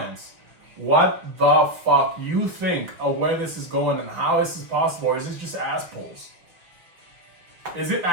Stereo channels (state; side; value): late; left; 6.0 ms